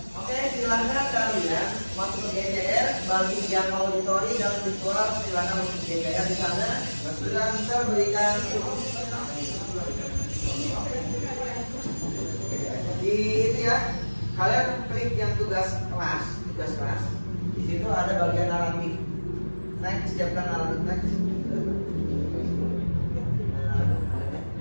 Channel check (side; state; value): both; inverted; correlation -1.00